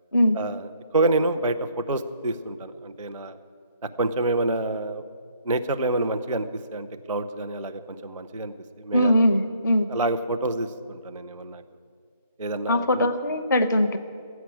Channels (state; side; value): inverted; both; correlation -0.64